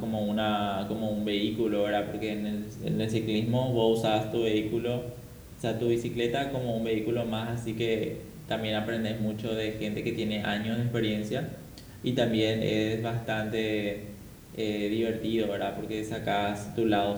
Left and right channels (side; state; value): both; identical; correlation 1.00